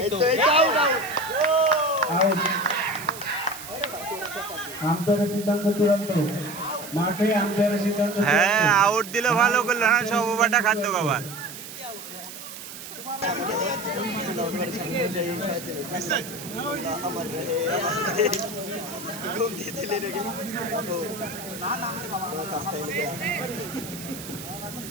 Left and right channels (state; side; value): noise; right; hiss, 12 dB below the sound